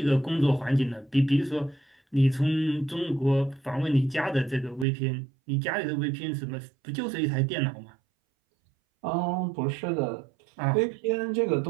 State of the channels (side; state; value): left; drops out; at 4.9 s